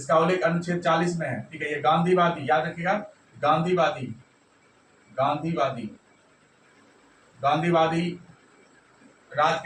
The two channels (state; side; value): identical; both; correlation 1.00